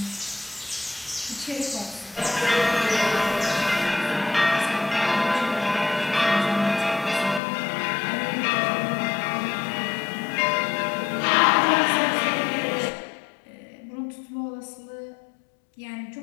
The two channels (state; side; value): drops out; right; at 7.4 s